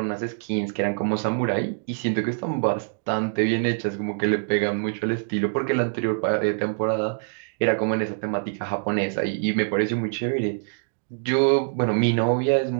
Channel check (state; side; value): silent; left; digital silence